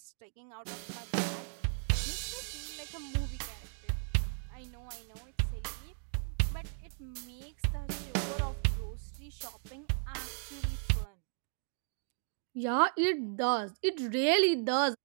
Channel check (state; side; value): silent; left; 54 dB below the other